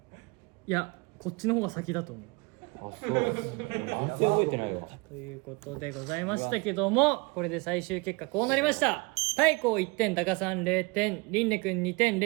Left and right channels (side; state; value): left; quieter; 28.3 dB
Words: れ？いや、こっちの方が先だと思う。あ、そう。全然覚えてないわ。ということでございましたけども、これで最終結果こうなりました。太閤1点、タカさん0点、リンネ君2点、